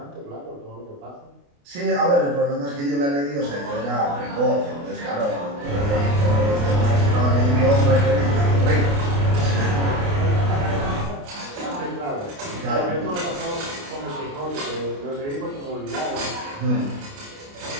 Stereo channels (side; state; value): left; late; 28 ms